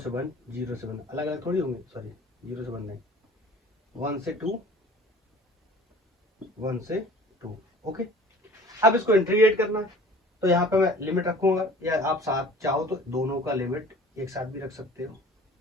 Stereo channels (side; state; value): both; normal; correlation 0.46